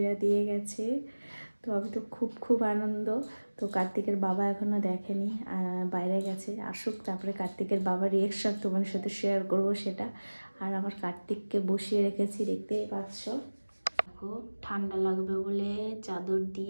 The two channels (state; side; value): inverted; both; correlation -1.00